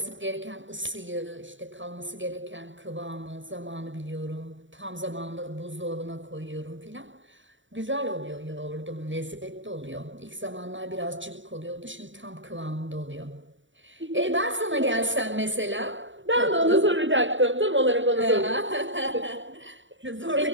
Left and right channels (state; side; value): late; left; 0.55 ms